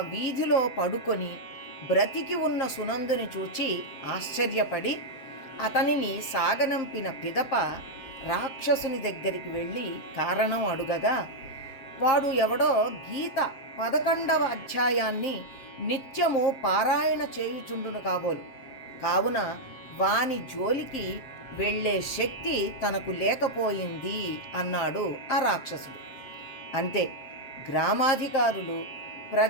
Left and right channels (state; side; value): late; right; 7.5 ms